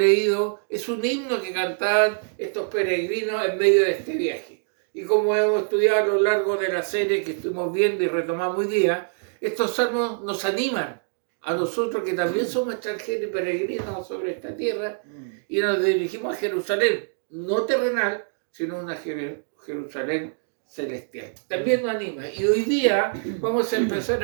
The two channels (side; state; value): left; silent; digital silence